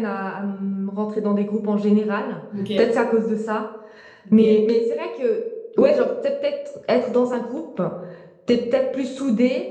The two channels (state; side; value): identical; both; correlation 1.00